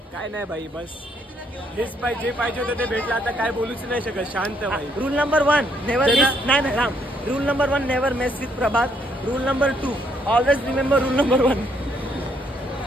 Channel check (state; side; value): normal; both; correlation 0.71